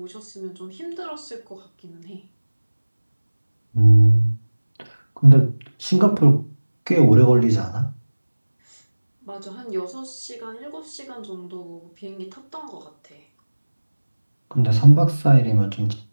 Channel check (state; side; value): inverted; both; correlation -1.00